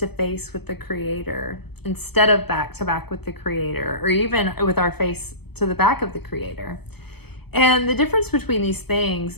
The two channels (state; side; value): late; right; 0.97 ms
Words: face with the Creator instead of back to back with the Creator, or even with our face to the back of the Creator. And the difference between these things